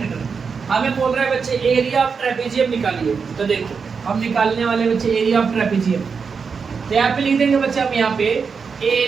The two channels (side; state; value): left; quieter; 5.6 dB